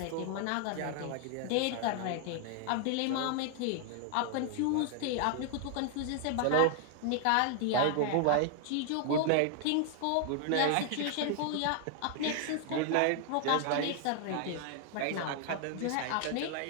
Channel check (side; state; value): both; different; correlation 0.00